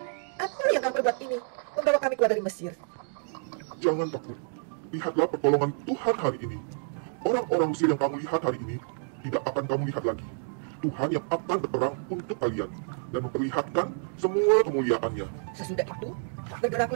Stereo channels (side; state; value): left; silent; digital silence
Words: Apa yang kau perbuat ini, membawa kami keluar dari Mesir?" Jangan takut. Lihatlah pertolongan Tuhan hari ini. Orang-orang Mesir yang kamu lihat hari ini tidak akan kamu lihat lagi. Tuhan yang akan berperang untuk kalian dan memperlihatkan semua kemuliaannya. Sesudah itu,